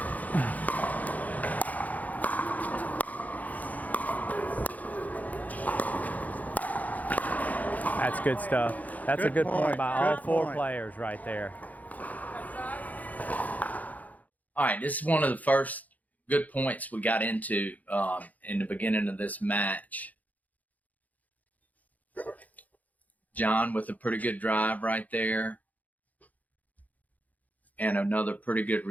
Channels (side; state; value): right; late; 0.078 ms